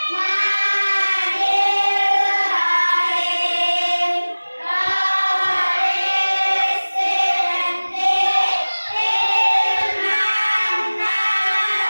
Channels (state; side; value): inverted; both; correlation -1.00